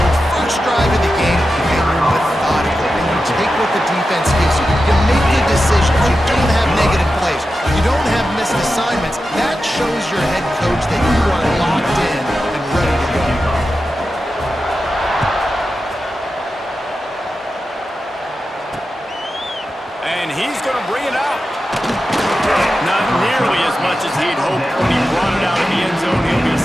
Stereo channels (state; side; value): normal; both; correlation 0.91